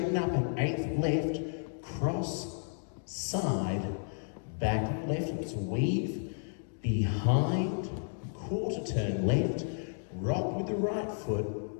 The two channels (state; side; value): silent; right; digital silence